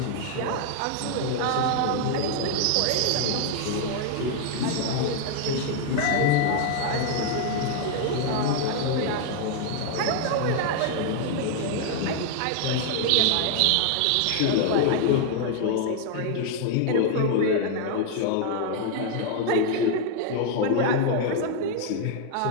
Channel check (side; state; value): both; different; correlation 0.00